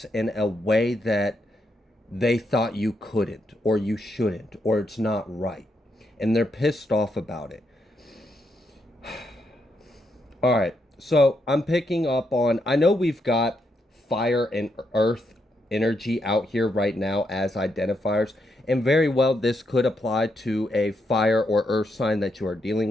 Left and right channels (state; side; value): normal; both; correlation 0.80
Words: in a way that they thought you couldn't, or you shouldn't, or it's not right. And they're pissed off about it. All right, so I'm picking up on, I know we've got fire and earth energy out here right now as identifiers, and very well this could apply to a fire or earth sign that you are